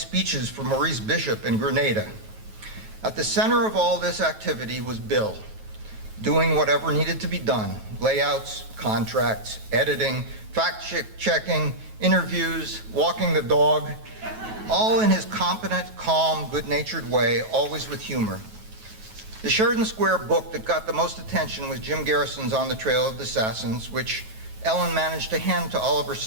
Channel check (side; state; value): left; late; 9.3 ms